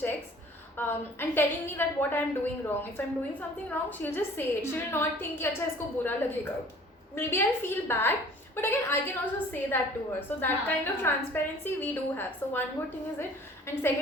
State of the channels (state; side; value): normal; both; correlation 0.50